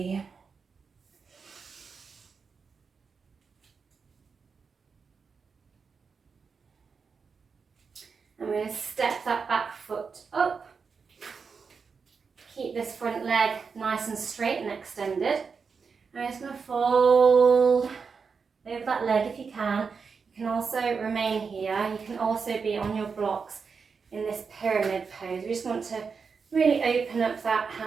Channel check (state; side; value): quieter; left; 5.4 dB